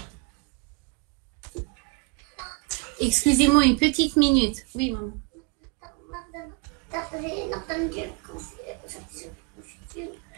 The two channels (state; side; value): quieter; left; 33.3 dB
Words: excusez-moi une petite minute. Oui, maman.